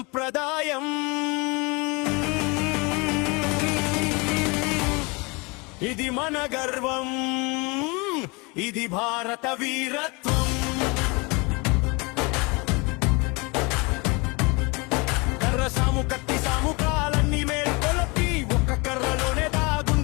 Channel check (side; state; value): right; quieter; 27.8 dB